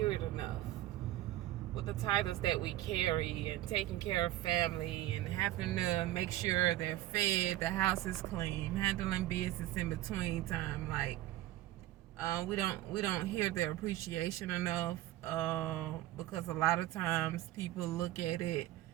it enough. with the titles that we carry and taking care of family and having to make sure they're fed, the house is clean, handling business in between time. Like, we don't hear their appreciation enough, because a lot of times people look at it,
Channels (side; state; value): left; quieter; 14.9 dB